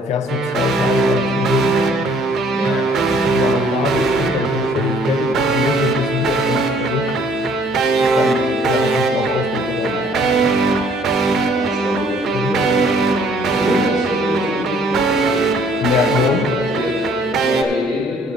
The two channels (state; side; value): normal; both; correlation 0.60